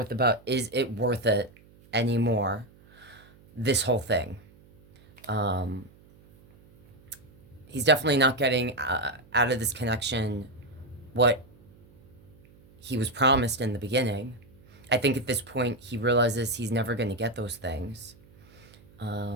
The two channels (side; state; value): right; noise; hum, 26 dB below the sound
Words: about, is it worth it anymore, this whole thing. He's definitely not getting out of this connection what he was promised in the beginning. I think at this point he realizes he's never going to get those things.